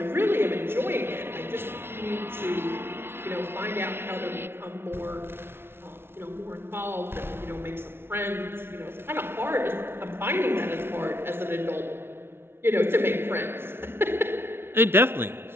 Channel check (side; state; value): left; late; 0.11 ms